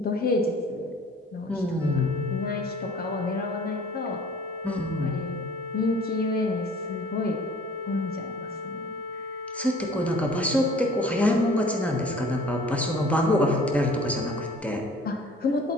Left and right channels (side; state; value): both; normal; correlation 0.49